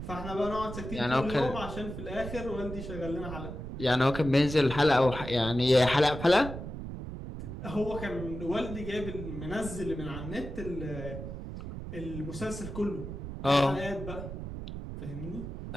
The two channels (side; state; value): right; noise; rumble, 8 dB below the sound